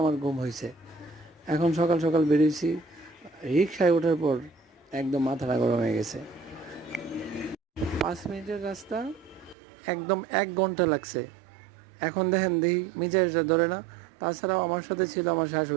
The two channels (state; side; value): drops out; left; at 9.6 s